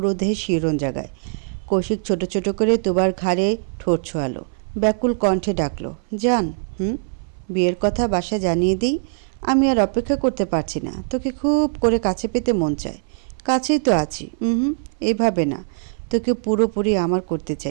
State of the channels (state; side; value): silent; left; 59 dB below the other